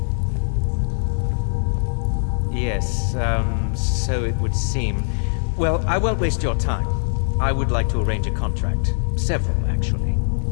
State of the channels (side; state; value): right; silent; digital silence